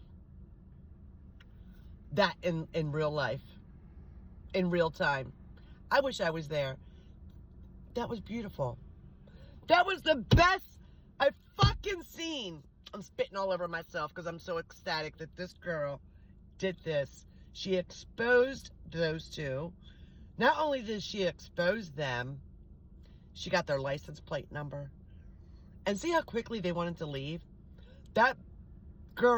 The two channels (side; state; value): both; identical; correlation 1.00